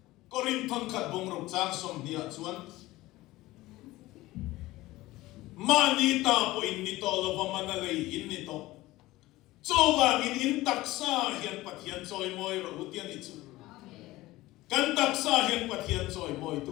korin thon khat bong rok chang som dia chuan mani ta po in nito lo vamana lei in nito chowang in taksa hian pathian choi moi ro utian ni chu kan taksa hian pathian choi moi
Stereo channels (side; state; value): right; quieter; 18.2 dB